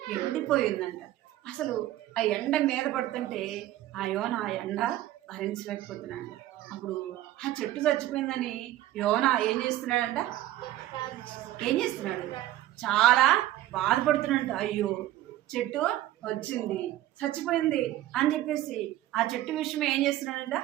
ఎండిపోయిందంట. అసలు ఆ ఎండ మీద పడుతుంటే ఆ యోనా ఆ ఎండ భరించలేకపోతున్నాడు. అప్పుడు ఆ చెట్టు చచ్చిపోయిందని యోనా ఏం చేస్తున్నాడంట? చాలా బాధపడుతున్నాడంట. అయ్యో చెట్టు వచ్చింది, చచ్చిపోయింది అని చెప్పేసి ఆ చెట్టు విషయం ఏం చేస్తున్నాడంట?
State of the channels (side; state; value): left; quieter; 14.4 dB